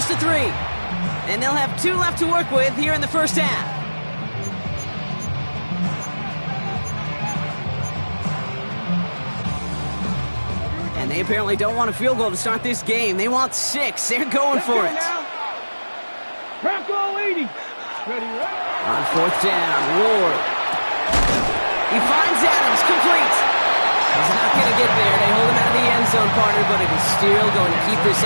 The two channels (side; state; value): both; inverted; correlation -1.00